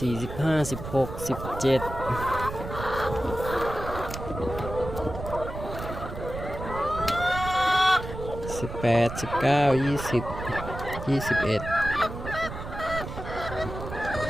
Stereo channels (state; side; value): noise; right; rumble, 8 dB below the sound